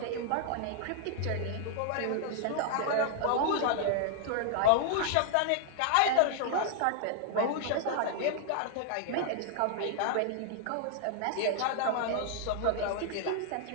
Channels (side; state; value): both; different; correlation 0.00